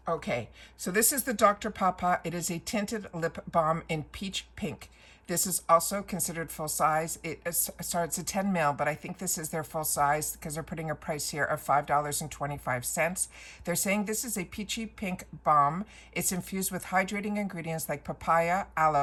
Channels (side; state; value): both; identical; correlation 1.00